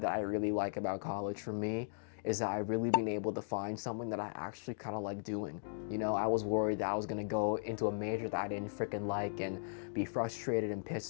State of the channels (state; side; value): silent; right; digital silence